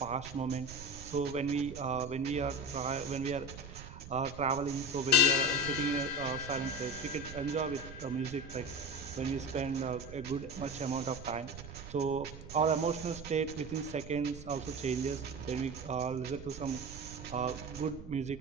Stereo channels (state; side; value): noise; right; rumble, 13 dB below the sound